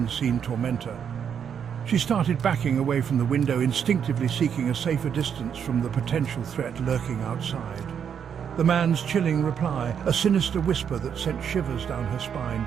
tormentor. She started backing away from the window, instinctively seeking a safer distance from the potential threat lurking outside. The man's chilling reply, a sinister whisper that sent shivers down her spine.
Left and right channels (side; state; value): left; quieter; 7.8 dB